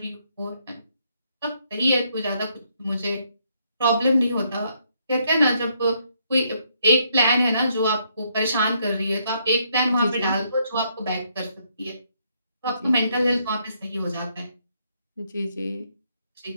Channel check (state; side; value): inverted; both; correlation -0.72